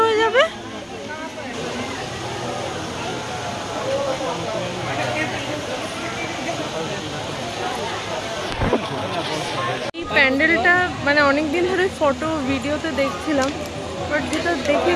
হয়ে যাবে। এই প্যান্ডেলটা মানে অনেকদিন ধরে ফটো ভিডিওতে দেখছিলাম, বাট যেটা দেখে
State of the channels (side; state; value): both; identical; correlation 1.00